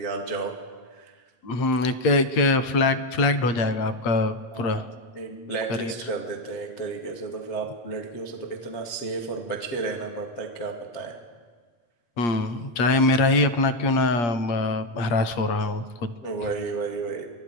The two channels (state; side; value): late; right; 8.5 ms